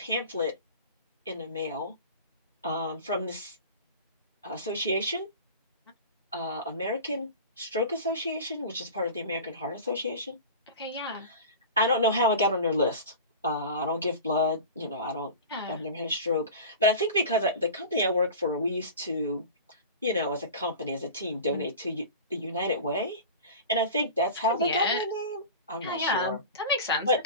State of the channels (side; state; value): both; inverted; correlation -0.34